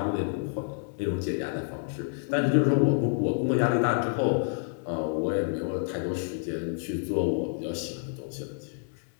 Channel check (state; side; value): silent; right; digital silence